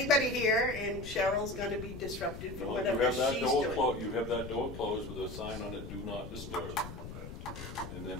here?" And Cheryl's going to be disrupted for No, whatever you have that she's door doing. you have that door closed with a sign on it, "Do not disturb." And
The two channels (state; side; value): noise; left; rumble, 10 dB below the sound